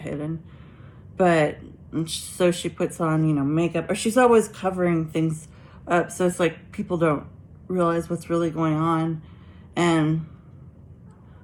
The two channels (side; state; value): both; identical; correlation 1.00